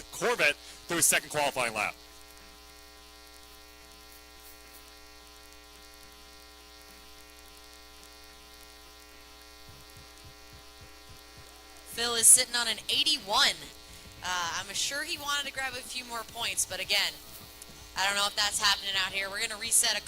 Corvette through his second qualifying lap. Phil is sitting on an 81. I'm sure he wanted to grab a few more points, but again, I don't know if that's happening out here. We're going to reset a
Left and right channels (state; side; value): identical; both; correlation 1.00